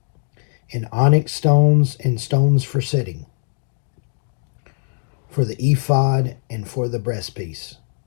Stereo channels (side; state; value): right; silent; digital silence